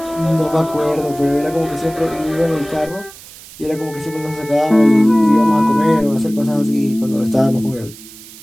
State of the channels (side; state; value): right; noise; hiss, 19 dB below the sound